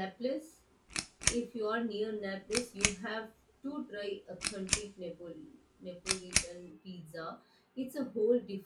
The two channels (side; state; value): both; identical; correlation 1.00